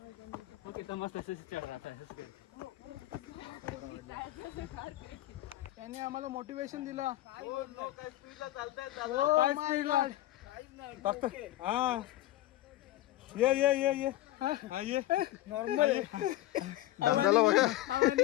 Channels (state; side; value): quieter; right; 15.4 dB